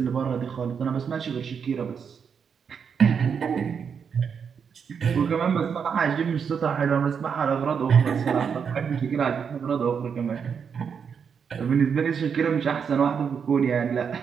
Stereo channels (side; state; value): left; quieter; 6.7 dB